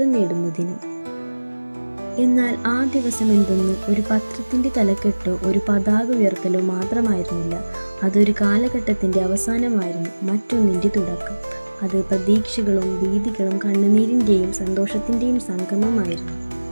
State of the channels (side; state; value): both; inverted; correlation -1.00